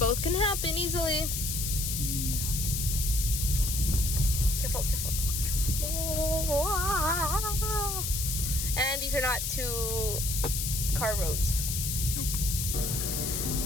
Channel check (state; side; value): noise; left; hiss, 2 dB below the sound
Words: can happen easily. Yeah. Careful. And these are not 2-car roads. Nope.